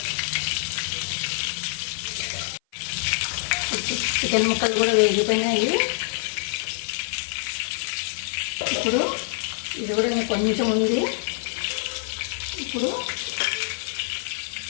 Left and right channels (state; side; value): silent; right; 55 dB below the other